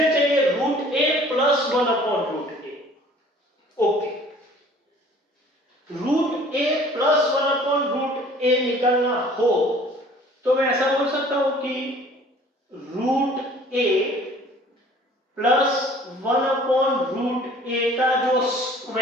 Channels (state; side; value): normal; both; correlation 0.51